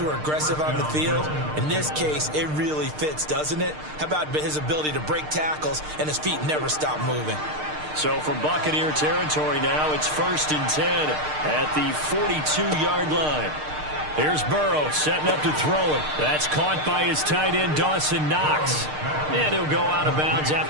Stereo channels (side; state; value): left; late; 6.6 ms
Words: are aggressive on the field. In this case, it really fits, doesn't it? How about his ability to break tackles and his feet never stop moving? So from Buccaneer territory now, it's 1st and 10 at the 42-yard line. Here's Burrow setting up to throw it. That's caught by his tight end, Dawson Knox. And he'll go out of bounds